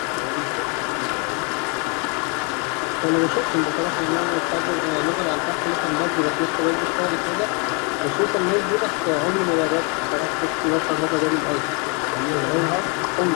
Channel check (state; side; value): quieter; right; 34.1 dB